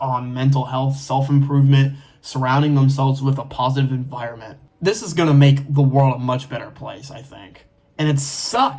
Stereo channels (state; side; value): identical; both; correlation 1.00